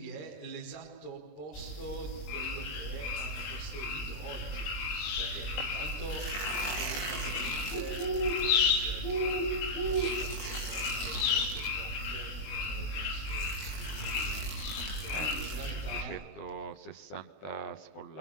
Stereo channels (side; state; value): right; late; 20 ms